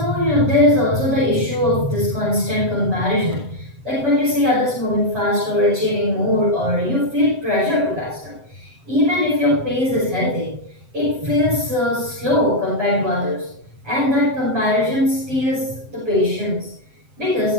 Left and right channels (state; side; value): late; left; 7.8 ms